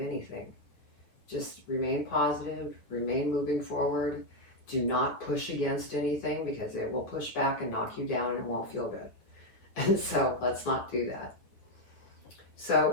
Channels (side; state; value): right; late; 9.5 ms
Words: Just remain positive, remain moving forward. Do not push against anything, because it will push back and knock you down and it won't feel good. And so let's not do that.